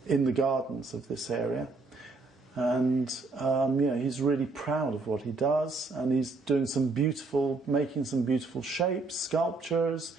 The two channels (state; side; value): quieter; left; 3.7 dB